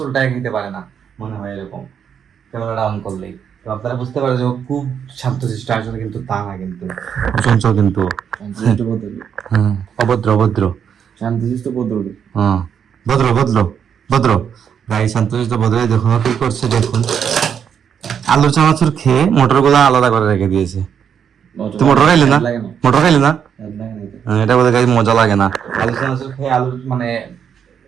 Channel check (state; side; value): quieter; left; 7.9 dB